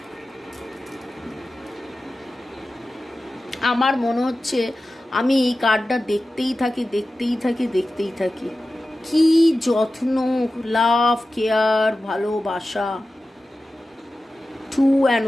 আমার মনে হচ্ছে আমি এই কার্ডটা দেখতেই থাকি। কি যত্ন, লাভ, কেয়ার, ভালোবাসা। 2 and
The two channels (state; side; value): normal; both; correlation 0.94